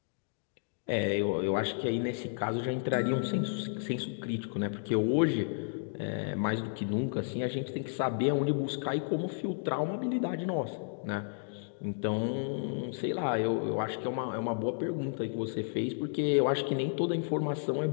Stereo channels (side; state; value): right; silent; digital silence